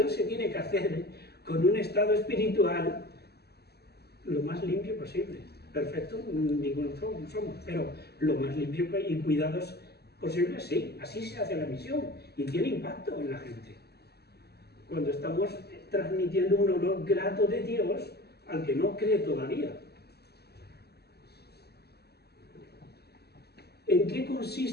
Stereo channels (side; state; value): right; late; 0.47 ms